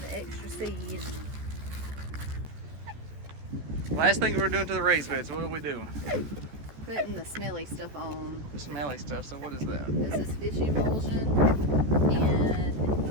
the extra seed. Last thing we're doing to the raised beds, what are we doing? Putting the smelly stuff on. The smelly stuff, so what is that? This is fish emulsion,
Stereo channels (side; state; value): left; late; 14 ms